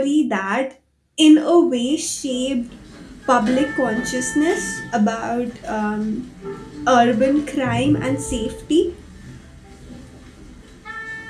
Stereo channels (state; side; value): identical; both; correlation 1.00